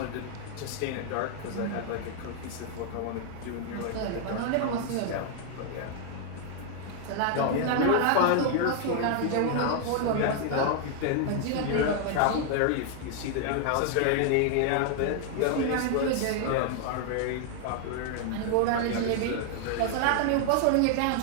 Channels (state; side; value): different; both; correlation 0.00